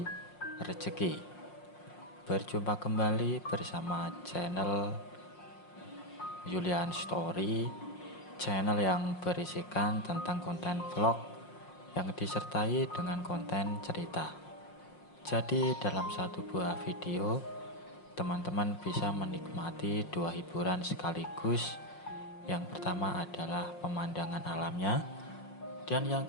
rezeki. Berjumpa kembali bersama channel Julian Story, channel yang berisikan tentang konten vlog yang disertai dengan konten cerita. Jadi dalam satu buah video, teman-teman bisa menikmati dua hiburan sekaligus. Yang pertama adalah pemandangan alamnya, dan yang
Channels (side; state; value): right; late; 5.6 ms